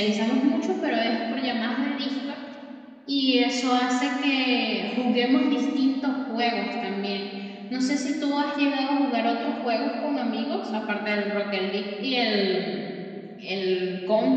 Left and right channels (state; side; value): identical; both; correlation 1.00